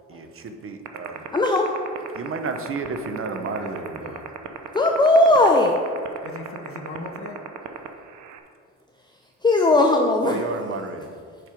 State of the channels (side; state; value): both; normal; correlation 0.40